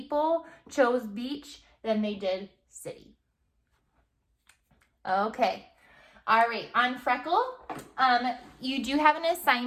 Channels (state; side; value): identical; both; correlation 1.00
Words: chose beach than they did city. Okay. All right, on Freckle, you do have an